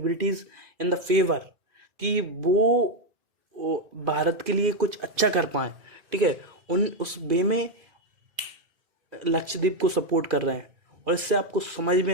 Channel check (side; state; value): left; late; 2.2 ms